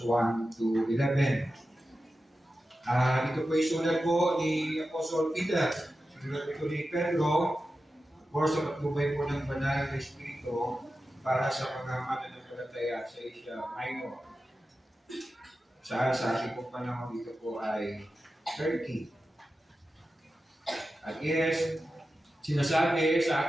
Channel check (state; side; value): normal; both; correlation 0.92